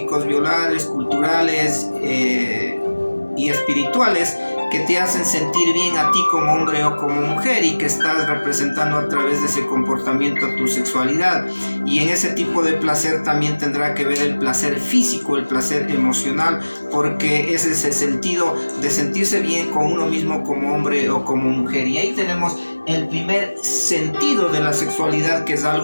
biológicos, culturales y espirituales que te hacen sentir bien a ti como hombre o como mujer y que estás representando a través de ese comportamiento tu sexualidad. Y en ese tipo de placer también tendrá que ver el placer físico, el placer emocional, porque ese es el sentido de sentirse bien con uno mismo como hombre o como mujer. Y ahí tenemos el primer sentido de la sexualidad, que es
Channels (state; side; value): inverted; both; correlation -1.00